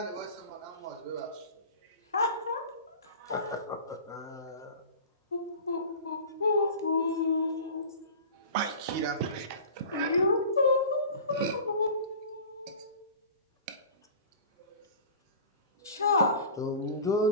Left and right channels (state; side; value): inverted; both; correlation -0.38